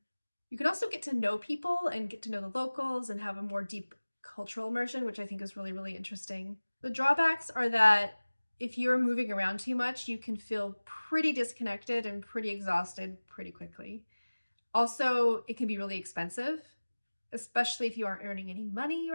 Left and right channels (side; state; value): both; inverted; correlation -1.00